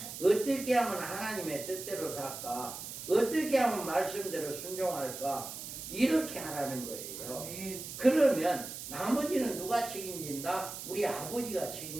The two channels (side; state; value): right; noise; hiss, 9 dB below the sound